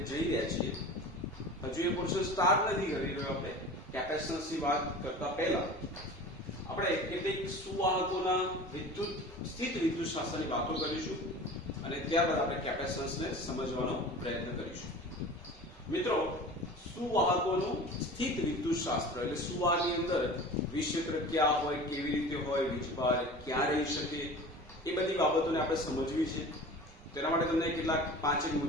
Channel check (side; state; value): both; normal; correlation 0.38